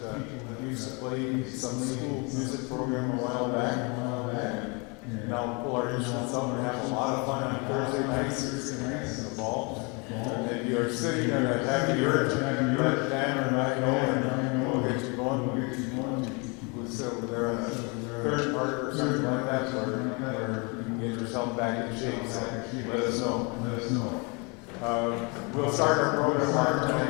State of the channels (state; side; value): quieter; right; 31.5 dB